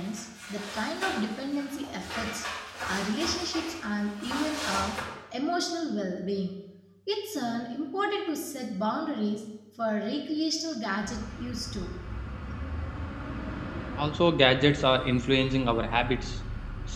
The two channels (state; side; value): identical; both; correlation 1.00